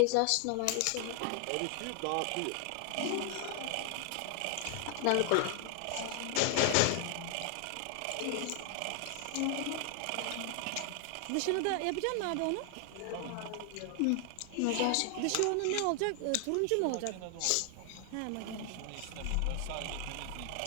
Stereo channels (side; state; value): both; different; correlation 0.00